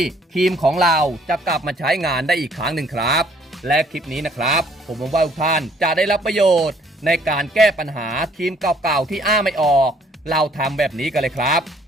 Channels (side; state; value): both; normal; correlation 0.62